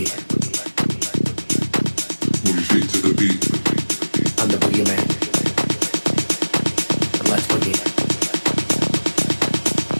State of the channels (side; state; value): both; inverted; correlation -1.00